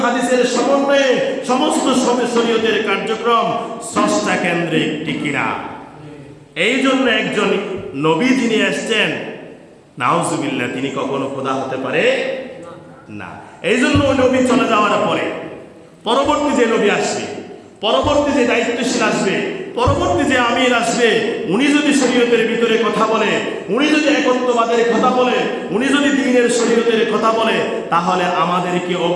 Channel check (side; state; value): both; identical; correlation 1.00